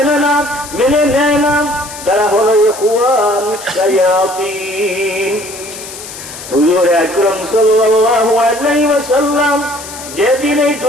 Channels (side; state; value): left; noise; hiss, 13 dB below the sound